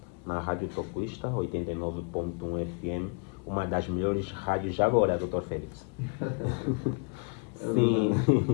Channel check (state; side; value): quieter; right; 37.3 dB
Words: na Rádio Tocuista 89.1 FM, uma das melhores rádios já agora, Dr. Félix. Sim,